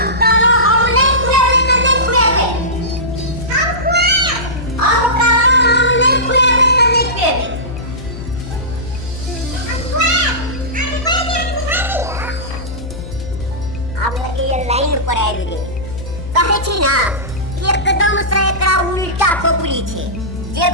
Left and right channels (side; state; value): left; noise; hum, 10 dB below the sound